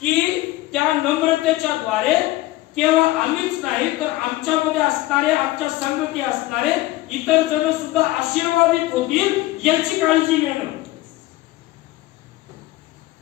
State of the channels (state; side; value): quieter; right; 17.8 dB